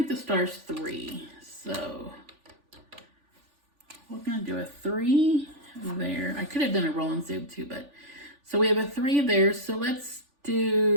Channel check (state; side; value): late; left; 3.4 ms